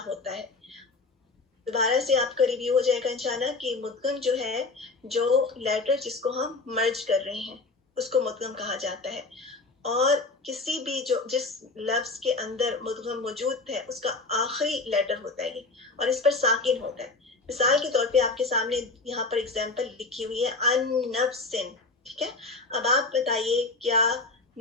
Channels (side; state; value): right; quieter; 3.6 dB